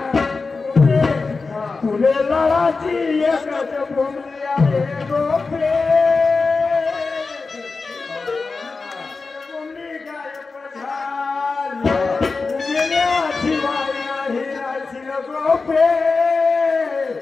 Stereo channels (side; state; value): right; quieter; 4.2 dB